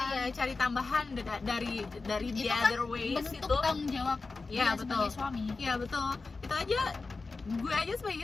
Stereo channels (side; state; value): right; quieter; 4.0 dB